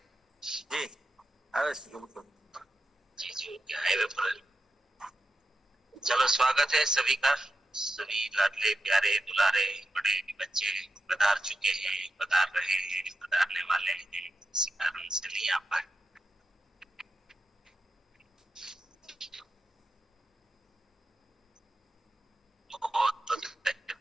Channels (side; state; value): both; normal; correlation 0.88